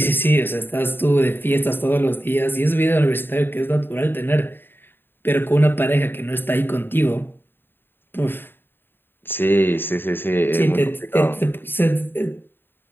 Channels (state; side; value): late; right; 0.099 ms